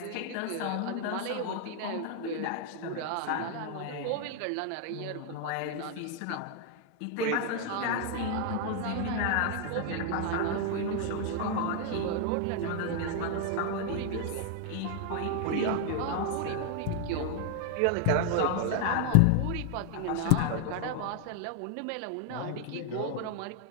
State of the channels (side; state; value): both; different; correlation 0.00